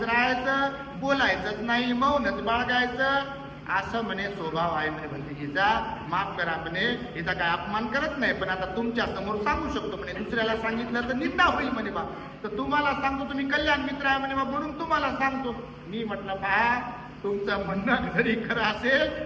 बोलायचंच नाही, मौनच बाळगायचं, असं म्हणे स्वभाव आहे म्हणे भंतीजीचा. माफ करा म्हणे, हिचा काय अपमान करत नाही, पण आता तुमच्या समोर सांगू शकतो म्हणे, दुसऱ्याला सांगितलं तर निंदा होईल म्हणे बा, तर तुम्हाला सांगतो, तुम्ही कल्याण मित्र आहे म्हणे बा, म्हणून तुम्हाला सांगतो. मी म्हटलं पहा, तुमचं म्हणणं जरी खरं असेल,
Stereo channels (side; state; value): both; identical; correlation 1.00